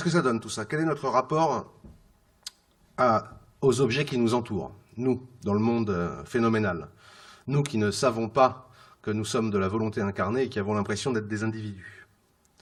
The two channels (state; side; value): identical; both; correlation 1.00